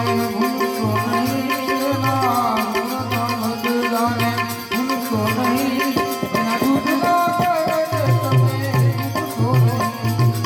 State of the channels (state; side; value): identical; both; correlation 1.00